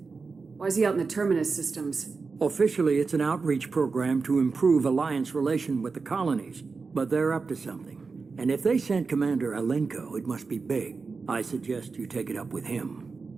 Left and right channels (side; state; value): left; quieter; 4.5 dB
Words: Why is he out in the Terminus systems? Officially, it's an outreach program to improve Alliance relation with the colonies, but they're up to something. And if they sent Commander Alenko, it must be big. I suggest you take it up with